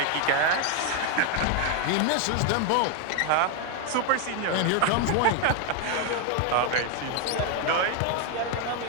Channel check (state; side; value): different; both; correlation 0.01